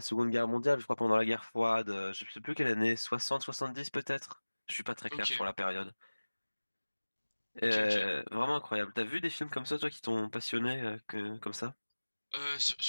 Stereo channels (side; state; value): both; inverted; correlation -1.00